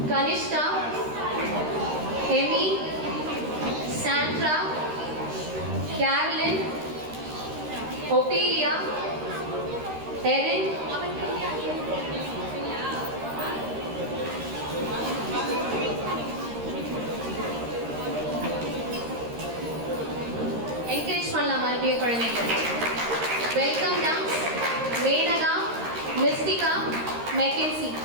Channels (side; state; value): left; late; 13 ms